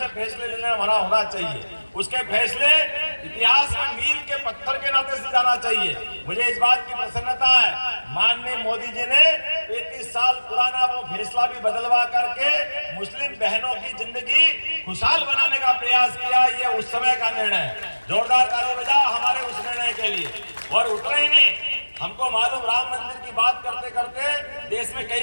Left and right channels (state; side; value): inverted; both; correlation -1.00